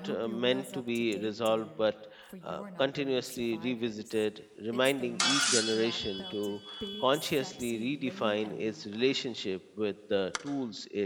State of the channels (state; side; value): identical; both; correlation 1.00